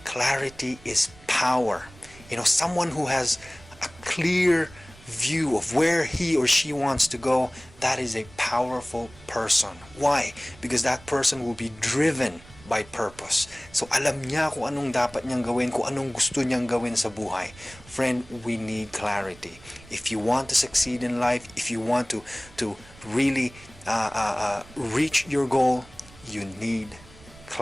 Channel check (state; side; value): noise; right; rumble, 22 dB below the sound